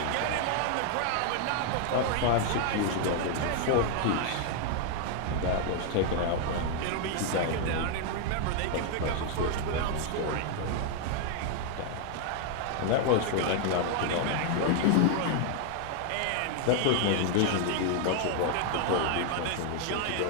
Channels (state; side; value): different; both; correlation 0.00